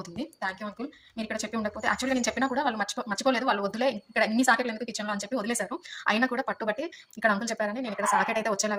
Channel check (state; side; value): identical; both; correlation 1.00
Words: Thank you uncle. మీరు ఇక్కడ చెప్పి ఉండకపోతే, యాక్చువల్గా నేను చెప్పినా కూడా వాళ్ళు మర్చిపోలేదు. వాళ్ళు వదిలే ఇక్కడ ఇన్ని సాకెట్లు ఎందుకు కిచెన్లో అని చెప్పి వదిలేశారు. అయినా కూడా పట్టుబట్టి ఇక్కడ అంకుల్ చెప్పారని నేను ఇక్కడ సాకెట్ అయితే